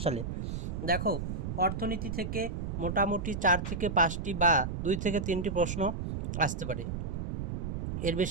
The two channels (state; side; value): noise; right; rumble, 4 dB below the sound